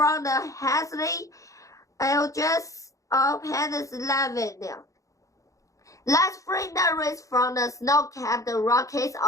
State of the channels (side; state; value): right; late; 0.16 ms